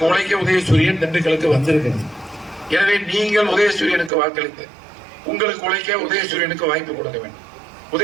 உழைக்க உதயசூரியன் திண்டுக்கலுக்கு வந்திருக்கிறது. எனவே நீங்கள் உதயசூரியனுக்கு வாக்களித்து உங்களுக்கு உழைக்க உதயசூரியனுக்கு வாய்ப்பு கொடுக்க வேண்டும்.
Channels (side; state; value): left; drops out; at 4.1 s